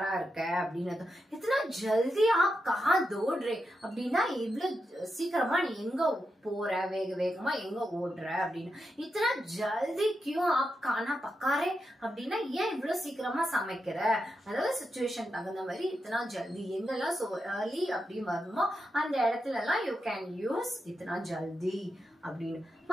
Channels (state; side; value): normal; both; correlation 0.86